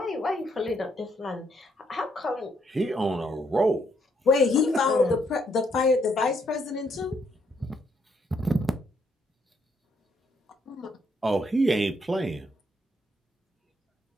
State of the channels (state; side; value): normal; both; correlation 0.73